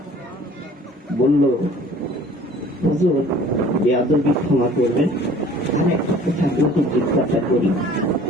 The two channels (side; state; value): both; normal; correlation 0.50